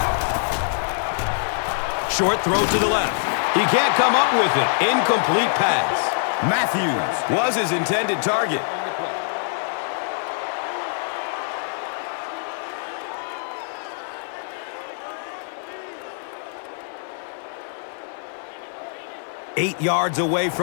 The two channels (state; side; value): silent; right; digital silence